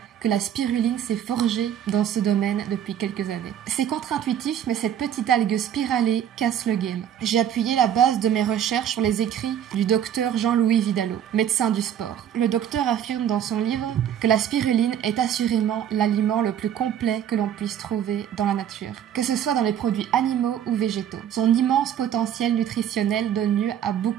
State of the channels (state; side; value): quieter; left; 9.8 dB